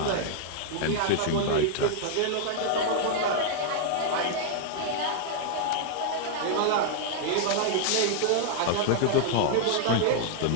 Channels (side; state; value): both; different; correlation -0.01